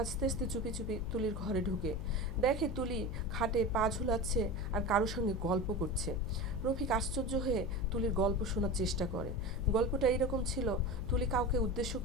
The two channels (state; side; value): noise; left; hum, 6 dB below the sound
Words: আস্তে আস্তে চুপি চুপি তুলির ঘরে ঢুকে দেখে তুলি খাটে পা ঝুলাচ্ছে আর কারোর সঙ্গে গল্প করছে। রফিক আশ্চর্য হয়ে তুলির গল্প শোনার চেষ্টা করে। গল্পটা এইরকম ছিল, তুলি কাউকে উদ্দেশ্য